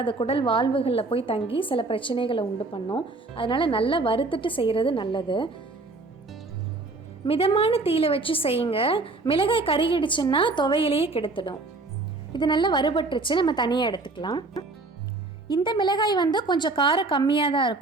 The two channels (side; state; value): left; quieter; 3.4 dB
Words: அது குடல் வாழ்வுகளில் போய் தங்கி சில பிரச்சனைகளை உண்டு பண்ணும். அதனால் நல்லா வறுத்துட்டு செய்கிறது நல்லது. மிதமான தீயில வச்சு செய்யுங்க. மிளகாய் கருகிடுச்சுன்னா துவையிலேயே கெடுத்துடும். இது நல்லா வறுபட்டுருச்சு, நம்ம தனியாக எடுத்துக்கலாம். இந்த மிளகாய் கொஞ்சம் காரம் கம்மியாக தான்